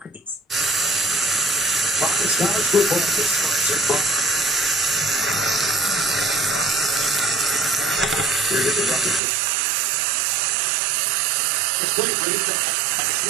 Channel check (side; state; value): left; drops out; at 9.2 s